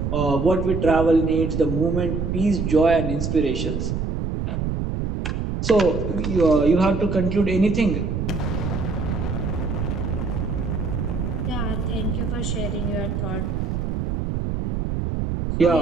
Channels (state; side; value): noise; right; rumble, 2 dB below the sound